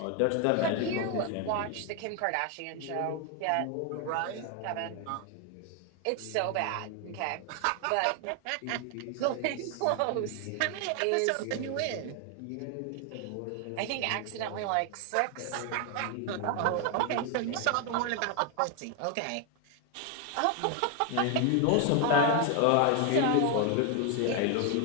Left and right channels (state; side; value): different; both; correlation 0.01